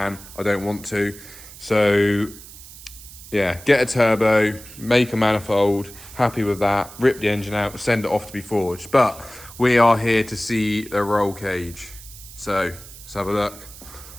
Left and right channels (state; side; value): noise; right; hiss, 17 dB below the sound